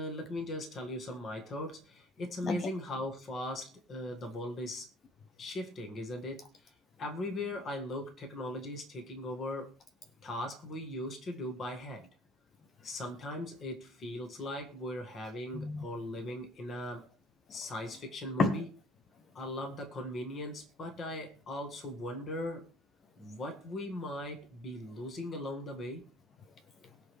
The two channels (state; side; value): normal; both; correlation 0.54